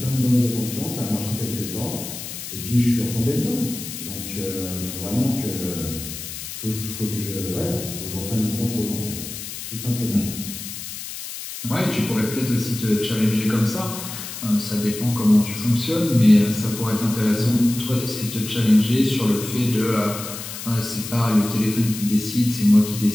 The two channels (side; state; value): left; noise; hiss, 9 dB below the sound